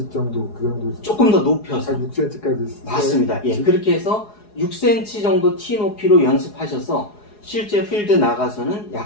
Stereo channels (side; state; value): right; late; 4.8 ms